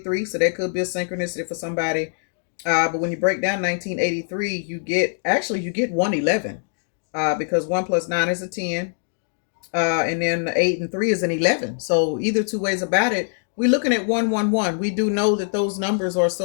so that could be a synchronicity for somebody. But when you break down 1983, you get 111, because 1 plus 9 is a 10, and then 8 and 3 is an 11. So either two ways about it, we're looking at 111. We do know that those numbers are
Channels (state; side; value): silent; right; digital silence